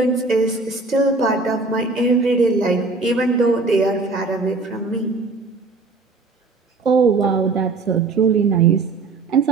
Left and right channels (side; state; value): left; quieter; 3.8 dB